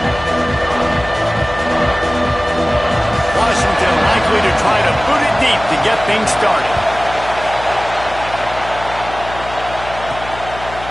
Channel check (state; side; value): noise; left; hum, 13 dB below the sound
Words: Washington likely to try to boot it deep to get things started.